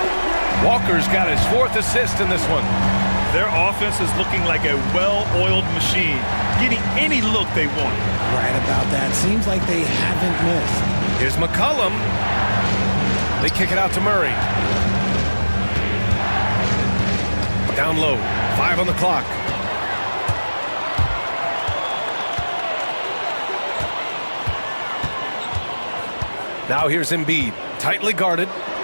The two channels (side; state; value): both; inverted; correlation -1.00